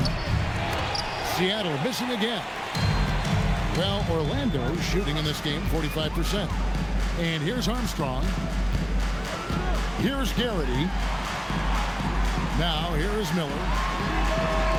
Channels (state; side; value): identical; both; correlation 1.00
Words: Seattle missing again. Well, Orlando shooting in this game 45%. And here's Armstrong. Here's Garrity. Now here's Miller.